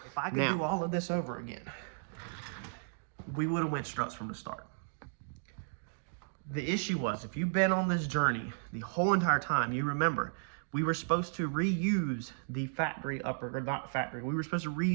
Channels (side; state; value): left; silent; digital silence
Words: If I could do all of this over again, we would have went struts from the start. The issue was, if you've been on this journey the whole entire time, you remember, we were supposed to reuse the factory upper, or not factory, we were supposed to